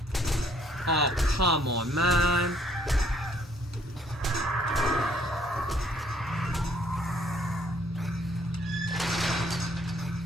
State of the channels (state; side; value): normal; both; correlation 0.64